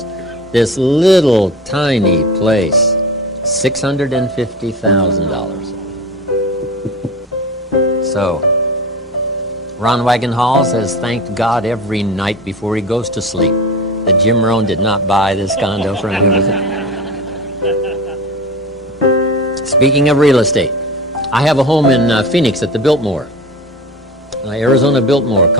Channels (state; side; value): normal; both; correlation 0.32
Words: this little tiny place, $650,000. So, Rohn Wagonhalls has thanked God every night before he goes to sleep that Jim Rohn did not buy this condo from him. Speaking of real estate, I have a home in Phoenix at the Biltmore, Arizona Biltmore